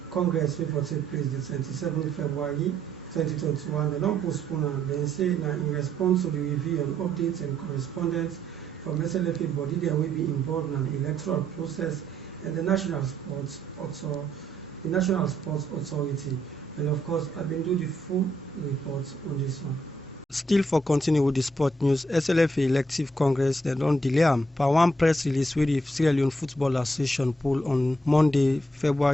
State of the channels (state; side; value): normal; both; correlation 0.73